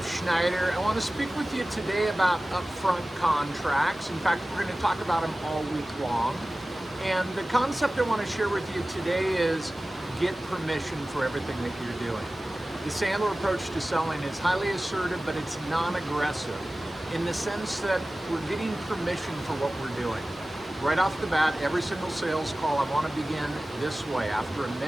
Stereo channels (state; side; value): normal; both; correlation 0.96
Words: Schneider. I want to speak with you today about upfront contracts. In fact, we're going to talk about them all week long. And the concept I want to share with you today is get permission for everything that you're doing. The Sandler approach to selling is highly assertive, but it's non-aggressive in the sense that we're getting permission for what we're doing. Right off the bat, every single sales call, I want to begin this way. After a